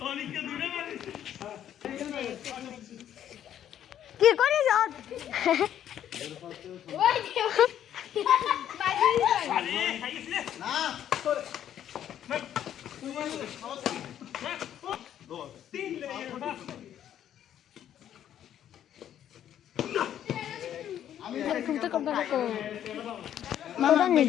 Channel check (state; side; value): quieter; right; 10.5 dB